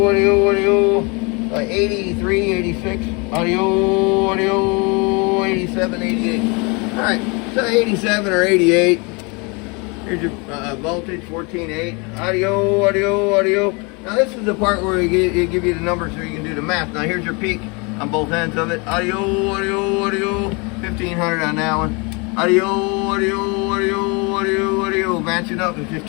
audio, audio. what, 83, 86, audio, 87, 88. All right, so 87 or 88. Here's your voltage, 14.8. Audio. Now this is the part where it give you the numbers so you can do the math. Now here's your peak on both ends of it. Audio, 1500 on that one. Audio, matching up at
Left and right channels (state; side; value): quieter; right; 30.3 dB